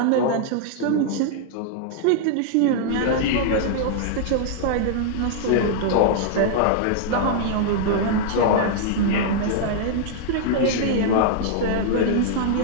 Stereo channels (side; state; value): both; different; correlation -0.01